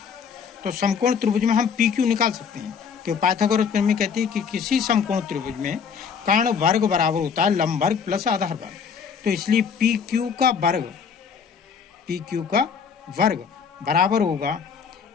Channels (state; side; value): quieter; right; 6.5 dB